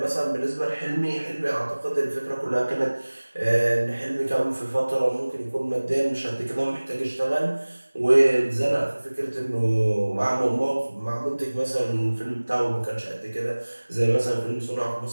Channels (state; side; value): inverted; both; correlation -1.00